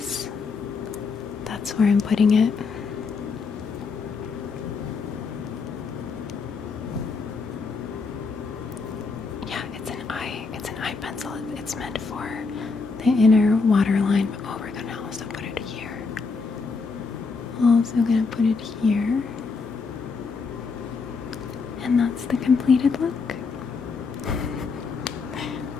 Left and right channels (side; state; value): right; quieter; 4.6 dB